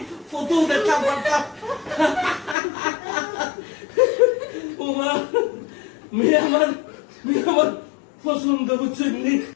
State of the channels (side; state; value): right; drops out; at 2.6 s